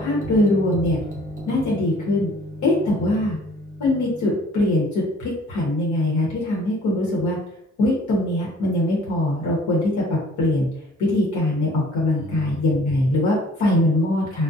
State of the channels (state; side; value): normal; both; correlation 0.54